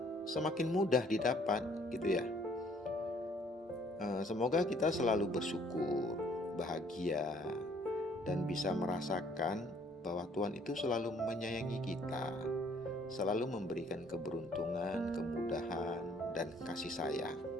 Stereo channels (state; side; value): normal; both; correlation 0.61